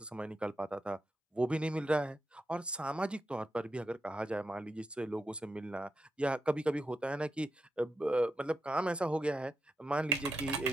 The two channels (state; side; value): normal; both; correlation 0.85